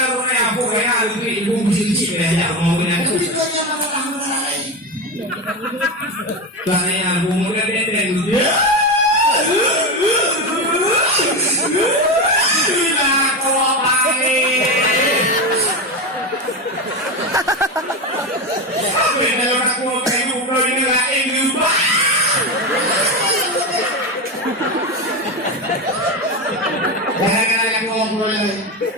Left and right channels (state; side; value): normal; both; correlation 0.17